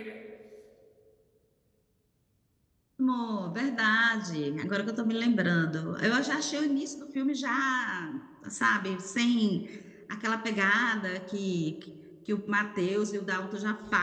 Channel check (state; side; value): identical; both; correlation 1.00